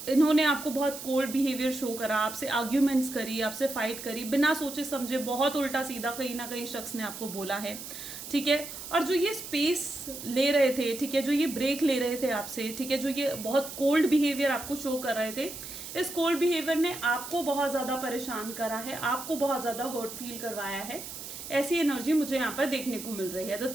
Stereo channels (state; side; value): noise; right; hiss, 10 dB below the sound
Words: इन्होंने आपको बहुत कोल्ड बिहेवियर शो करा, आपसे आर्ग्यूमेंट्स करी, आपसे फाइट करी, बिना सोचे समझे, बहुत उल्टा सीधा कहीं ना कहीं शख्स ने आपको बोला है, ठीक है। और जो ये स्पेस ले रहे थे, ठीक है, जो ये ब्रेक ले रहे थे आपसे, ठीक है, जो ये बहुत कोल्ड बिहेवियर आपको शो कर रहे थे, इस कोल्ड बिहेवियर ने आपको बहुत ज़्यादा परेशान करा है, आपको बहुत ज़्यादा हर्ट फील करवाया है। ऐसी एनर्जी मुझे यहाँ पर देखने को मिल रही है। The